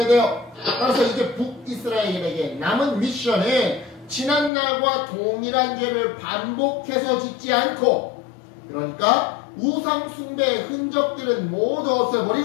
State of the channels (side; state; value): right; drops out; at 4.5 s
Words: 돼요. 따라서 이제 북이스라엘에게 남은 미션은 지난날과 동일한 죄를 반복해서 짓지 않고, 그러니까 우상 숭배의 흔적들은 모두